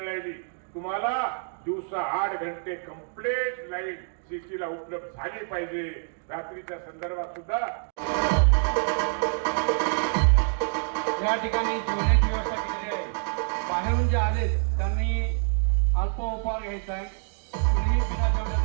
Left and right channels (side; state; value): left; silent; 60 dB below the other